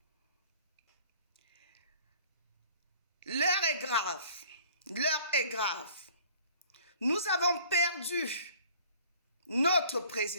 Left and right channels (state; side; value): inverted; both; correlation -0.53